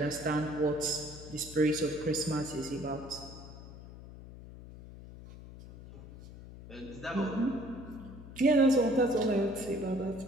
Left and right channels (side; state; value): left; noise; hum, 15 dB below the sound